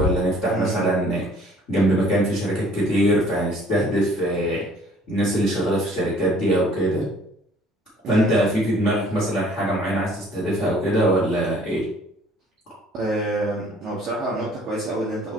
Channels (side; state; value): both; normal; correlation 0.56